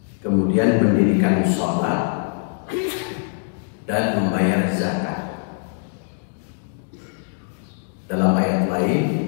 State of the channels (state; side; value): silent; right; digital silence